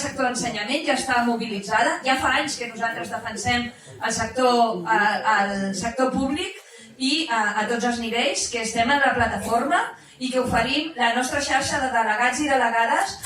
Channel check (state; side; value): identical; both; correlation 1.00